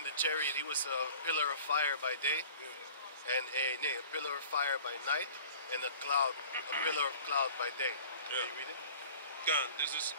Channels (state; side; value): inverted; both; correlation -0.46